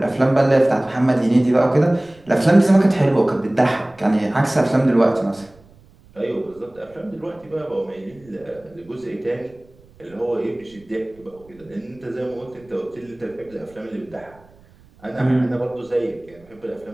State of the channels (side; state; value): right; noise; rumble, 27 dB below the sound